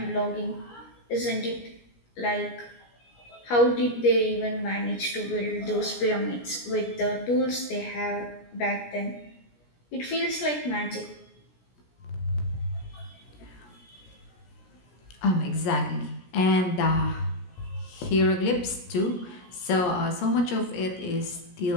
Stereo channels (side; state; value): right; late; 17 ms